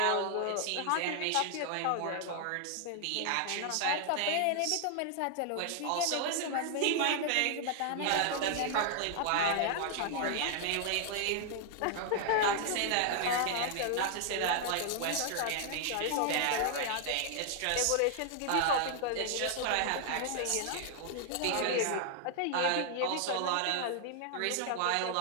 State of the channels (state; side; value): different; both; correlation 0.00